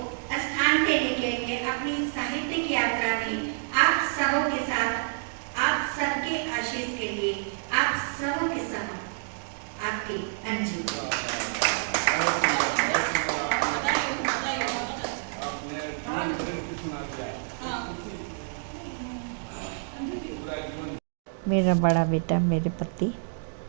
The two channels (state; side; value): silent; left; digital silence